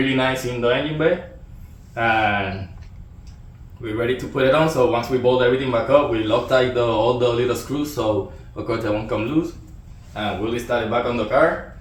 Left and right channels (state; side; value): identical; both; correlation 1.00